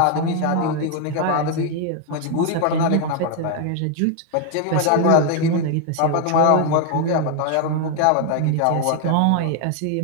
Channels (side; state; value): both; different; correlation 0.00